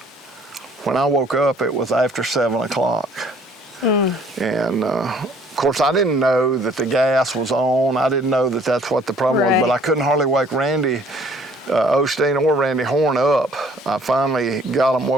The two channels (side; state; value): both; normal; correlation 0.57